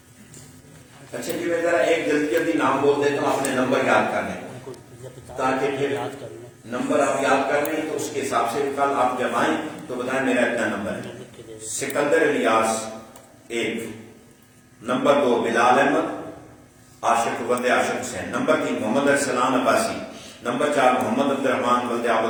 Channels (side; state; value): both; identical; correlation 1.00